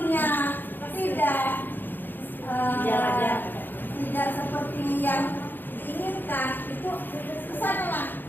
tidak seperti yang diinginkan, itu kesanalah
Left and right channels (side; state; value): right; late; 0.092 ms